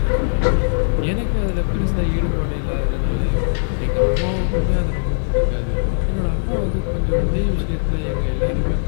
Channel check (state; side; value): silent; right; digital silence